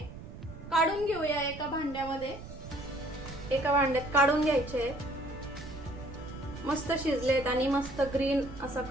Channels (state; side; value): noise; right; rumble, 13 dB below the sound